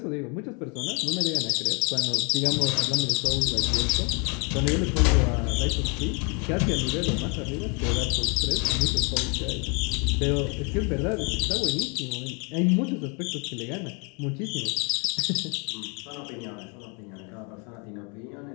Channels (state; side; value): quieter; right; 33.8 dB